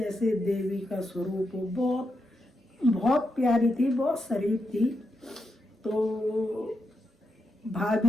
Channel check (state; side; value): normal; both; correlation 0.84